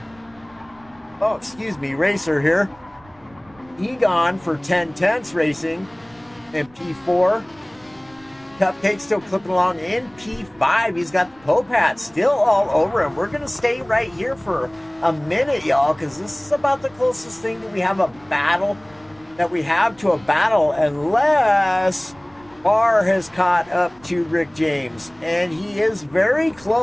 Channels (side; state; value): right; noise; rumble, 29 dB below the sound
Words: Oh, excuse me, racer here. Egon for 10 tenths racing in P4. Cupcake still clipping along in P5. He's got the Pope hat still all over him. We're going to stay right here for a minute, y'all, because this is about the closest thing that we have to a battle, unless Barr has caught up to Rick James. And he is very